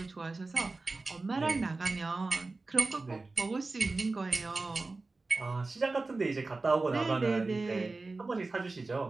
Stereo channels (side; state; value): left; quieter; 3.5 dB